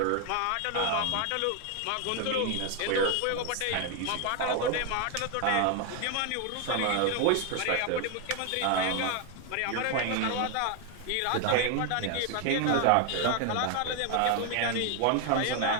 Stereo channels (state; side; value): different; both; correlation 0.01